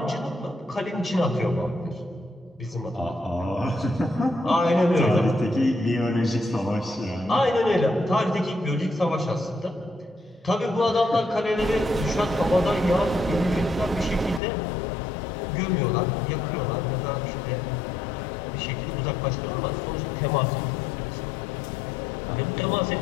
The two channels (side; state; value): right; drops out; at 14.4 s